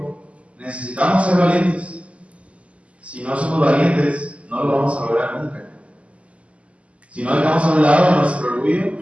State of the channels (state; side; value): late; left; 0.062 ms